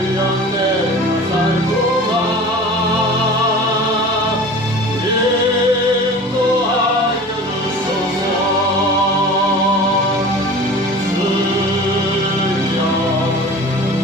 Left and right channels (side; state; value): both; normal; correlation 0.39